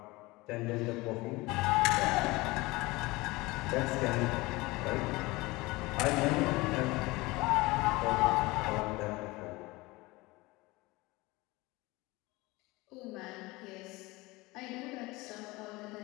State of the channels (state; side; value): quieter; right; 22.0 dB